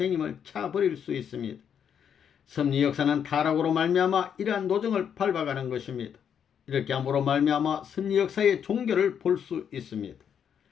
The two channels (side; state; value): right; quieter; 8.1 dB